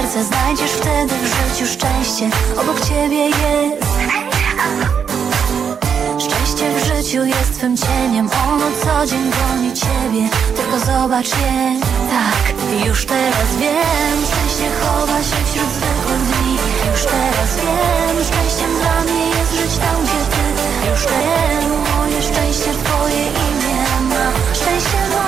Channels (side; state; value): left; quieter; 7.1 dB